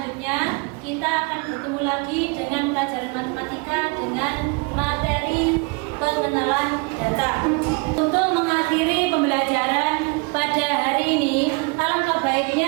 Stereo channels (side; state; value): left; quieter; 30.2 dB